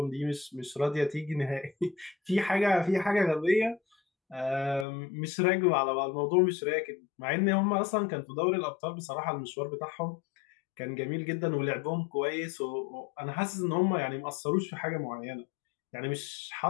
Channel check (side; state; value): right; drops out; at 4.9 s